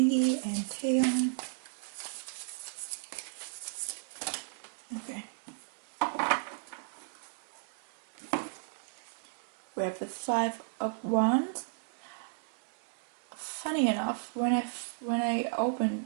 and Taehyung. Okay. We have the Five of Wands. Funny enough, when I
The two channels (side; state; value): left; silent; 55 dB below the other